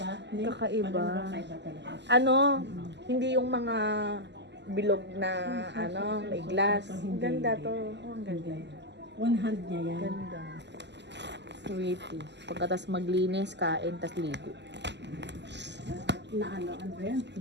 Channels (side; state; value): left; late; 0.51 ms